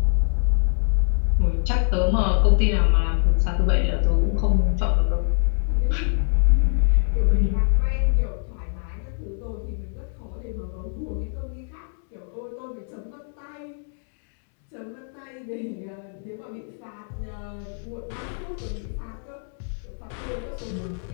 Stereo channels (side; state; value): right; silent; digital silence